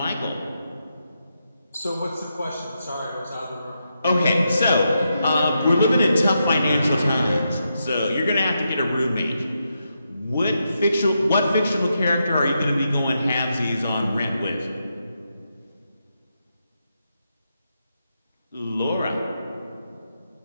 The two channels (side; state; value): both; inverted; correlation -0.84